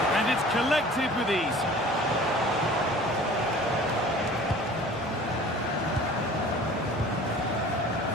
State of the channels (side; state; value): both; normal; correlation 0.45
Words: And it's collected with ease.